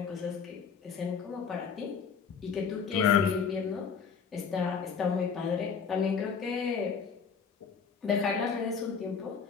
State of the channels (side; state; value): right; quieter; 6.2 dB